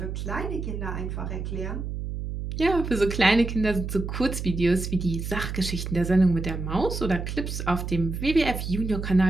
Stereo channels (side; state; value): right; noise; hum, 5 dB below the sound